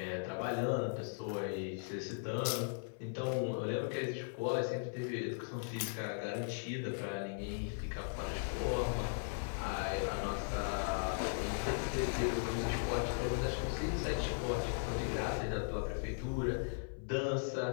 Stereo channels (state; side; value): silent; right; 52 dB below the other